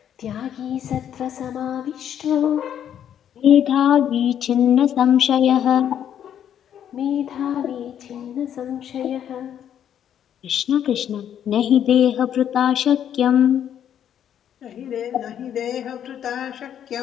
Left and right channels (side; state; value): right; quieter; 9.6 dB